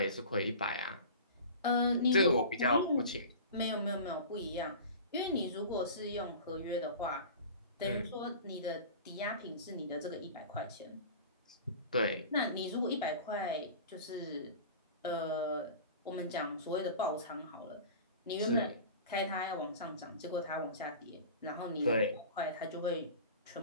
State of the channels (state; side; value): inverted; both; correlation -0.37